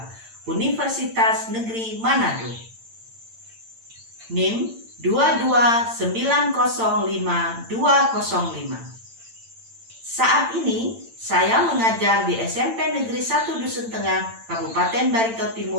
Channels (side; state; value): left; late; 8.8 ms